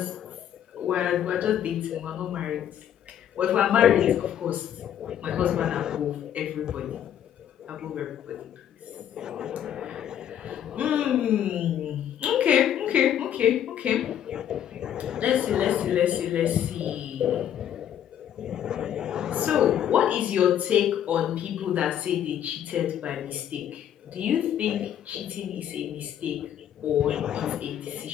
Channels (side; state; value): right; quieter; 10.2 dB